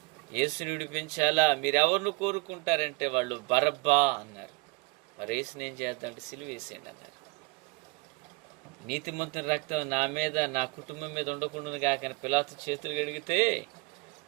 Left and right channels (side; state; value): left; quieter; 27.4 dB